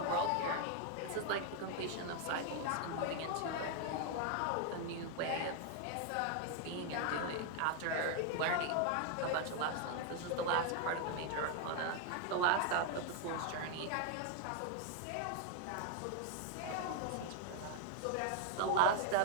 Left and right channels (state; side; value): different; both; correlation 0.00